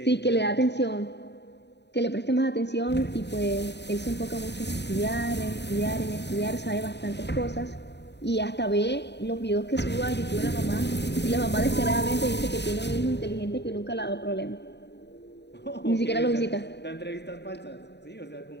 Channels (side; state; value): right; late; 0.50 ms